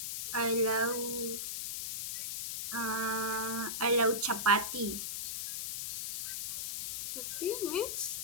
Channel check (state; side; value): noise; left; hiss, 3 dB below the sound